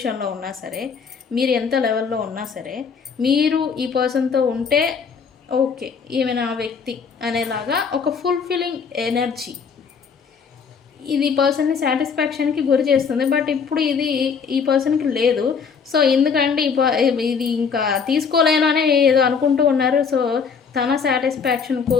ఉన్నా సరే, మీరు ఎంత లెవెల్లో ఉన్నా సరే, మీరు ఈ పర్సన్తో ఉంటే ఓకే ఈమె నా వ్యక్తి అనేలాగా ఒక ఫుల్ఫిల్లింగ్ ఎనర్జీ ఇది పర్సన్ని సాటిస్ఫాక్షన్కి గురి చేస్తుంది. బట్ ఇప్పుడు ఇది ఈ పర్సన్కి లేదు. సో ఎందుకంటే ఇది ఇంకా తీసుకోలేను అని ఏదో అనుకుంటూ ఉన్నారు. సో తన సాటిస్ఫాక్షన్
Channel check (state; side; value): quieter; right; 6.0 dB